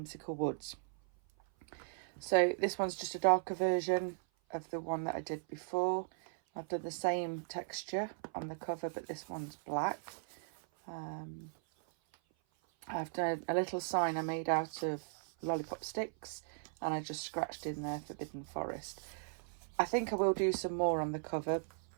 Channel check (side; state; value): left; silent; 53 dB below the other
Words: Woods. So this one's just a darker version of the one that I did before. I've done the same texture on the cover, but this one's black. I've done a little sign I made out of lollipop sticks, and I just scratched in there Forbidden Forest. I think I will do some more on the cover,